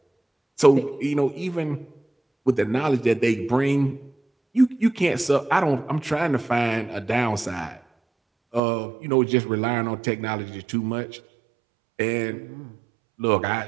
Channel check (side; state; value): left; drops out; at 8.6 s